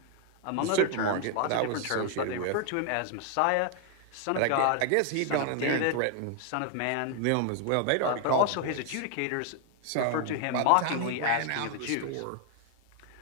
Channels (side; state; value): both; different; correlation 0.00